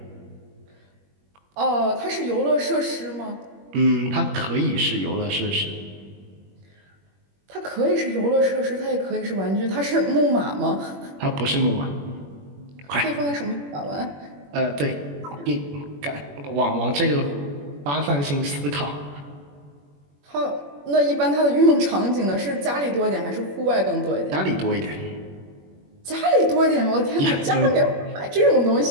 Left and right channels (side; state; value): left; late; 21 ms